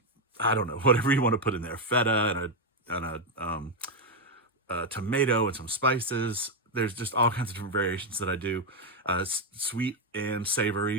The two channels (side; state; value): both; normal; correlation 0.03